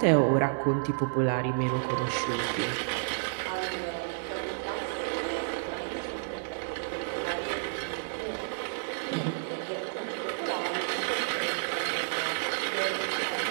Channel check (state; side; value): silent; left; digital silence